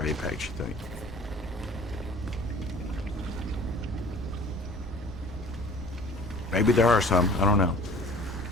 Apex, you think? Maybe there are some. I don't know.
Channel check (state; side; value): normal; both; correlation 0.48